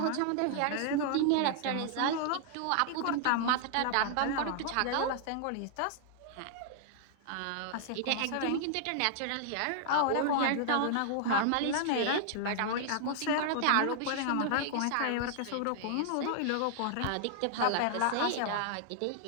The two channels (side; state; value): both; different; correlation -0.01